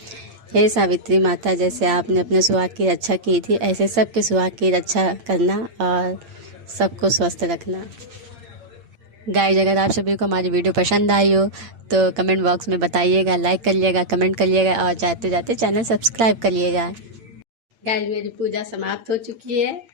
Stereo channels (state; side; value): late; left; 8.7 ms